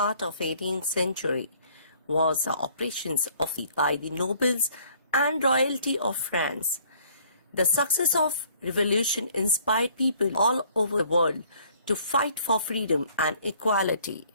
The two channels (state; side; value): inverted; both; correlation -0.59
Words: of 18th century, was operations by the nobles and royalty of France. The success of revolution inspired people all over the world to fight for freedom and equality.